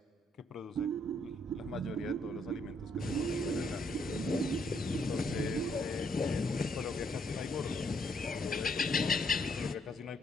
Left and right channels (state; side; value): normal; both; correlation 0.72